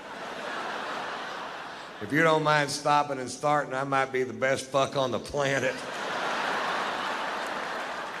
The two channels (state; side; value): identical; both; correlation 1.00